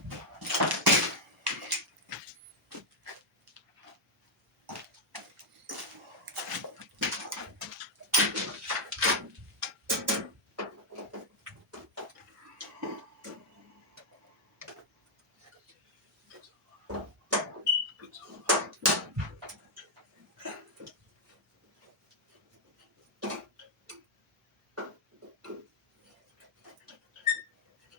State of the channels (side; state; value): both; normal; correlation -0.03